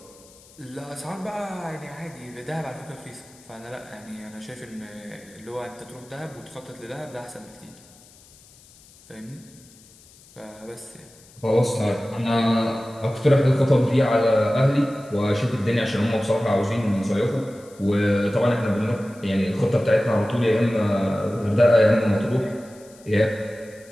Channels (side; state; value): left; noise; hiss, 25 dB below the sound